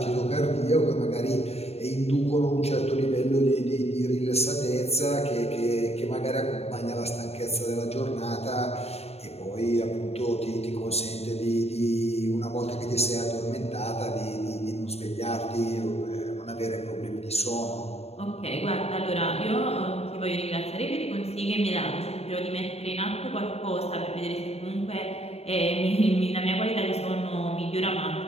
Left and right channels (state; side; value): late; right; 0.30 ms